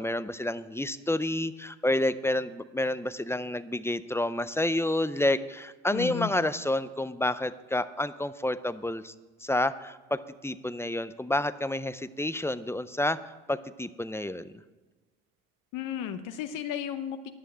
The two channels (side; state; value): both; normal; correlation 0.71